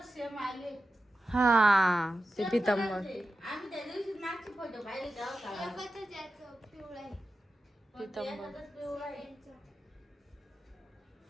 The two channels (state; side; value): normal; both; correlation 0.93